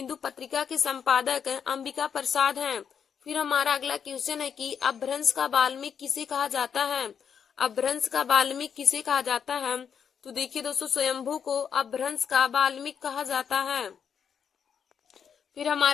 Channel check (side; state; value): right; quieter; 7.5 dB